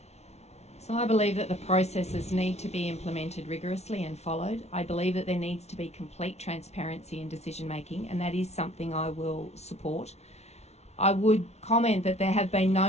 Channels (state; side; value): late; right; 0.31 ms